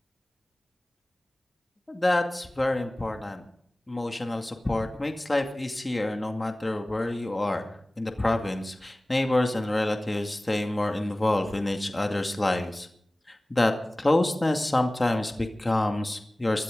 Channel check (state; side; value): normal; both; correlation 0.98